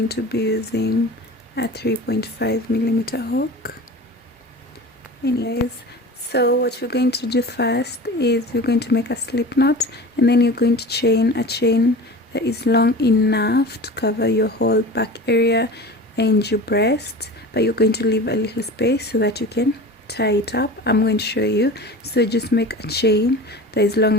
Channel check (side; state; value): both; normal; correlation 0.35